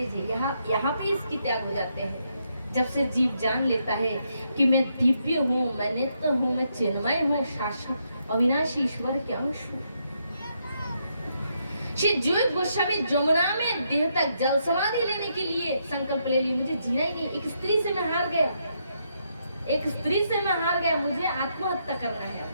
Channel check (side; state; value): both; inverted; correlation -0.78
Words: है। यहाँ पे इसकी त्याग हो जाते हैं। जब से जीव जान लेता है कि मैं दिव्य हूँ, मैं नित्य हूँ, मैं चिन्मय हूँ, शाश्वत अविनाशी ईश्वर के अंश हूँ। श्री जोग गोस्वामी जमुना में देह तक जल समाधि लेने के लिए संकल्प ले लिया, मुझे जीना ही नहीं, एक स्त्री से मैं हार गया, एक स्त्री से मैं हार गया, मुझे आत्महत्या करना है।